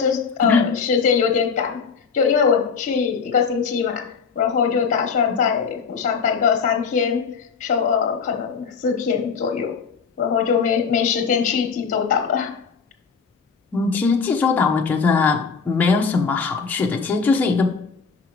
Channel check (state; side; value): quieter; right; 5.7 dB